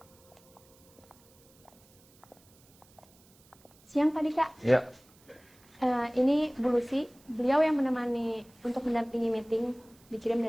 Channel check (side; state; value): right; noise; hiss, 29 dB below the sound